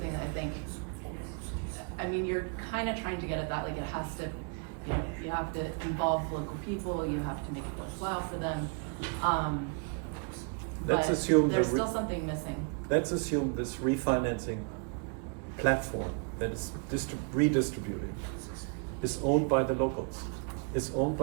that I think, I mean, you're kind of trying to get at that, like it has to, you know, you have to involve local people, you have to make it worthwhile for them. Let's but assume there's still something missing. Let's assume this refinancing platform that is redistributing is owned by the locals, is owned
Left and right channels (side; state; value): left; quieter; 37.9 dB